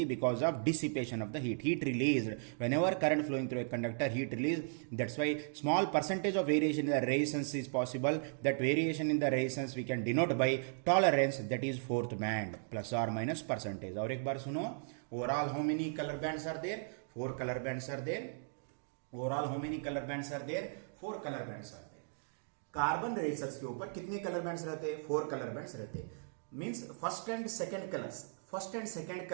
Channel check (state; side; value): silent; left; digital silence